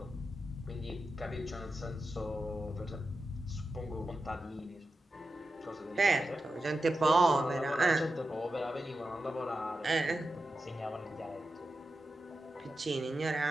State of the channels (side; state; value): both; normal; correlation 0.90